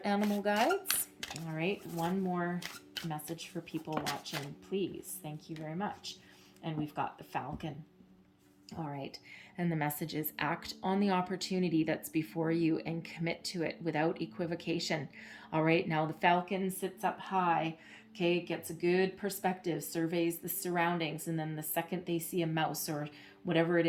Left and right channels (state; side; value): identical; both; correlation 1.00